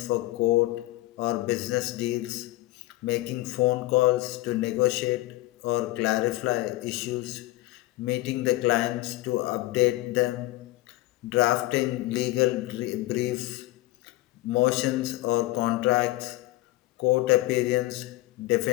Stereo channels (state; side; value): quieter; right; 18.5 dB